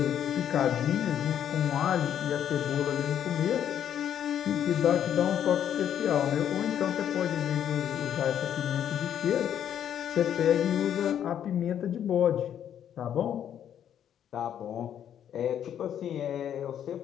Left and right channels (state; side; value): quieter; right; 9.8 dB